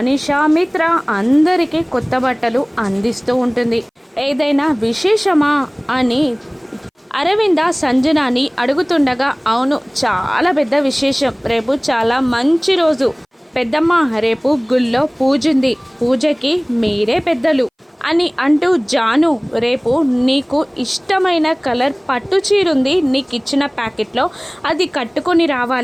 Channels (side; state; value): both; identical; correlation 1.00